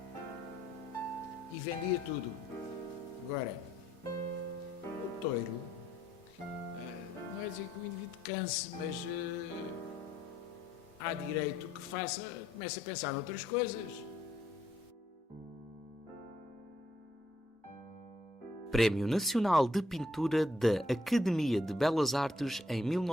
e vendia tudo. Agora, o touro, não é dizer que o indivíduo canse, mas há direito que comece a pensar noutras coisas. Prémio Nacional de Pintura da Academia de Belas Artes em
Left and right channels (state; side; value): normal; both; correlation 0.71